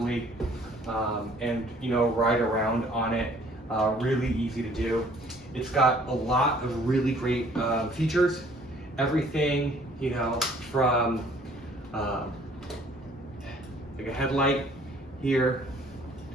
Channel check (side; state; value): both; normal; correlation 0.57